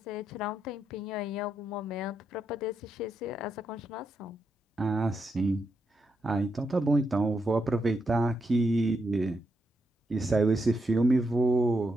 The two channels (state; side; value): normal; both; correlation 0.82